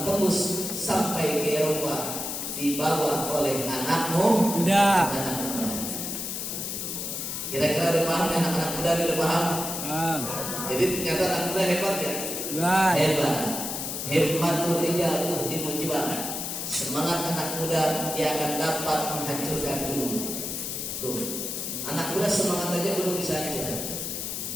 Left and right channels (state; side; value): noise; left; hiss, 4 dB below the sound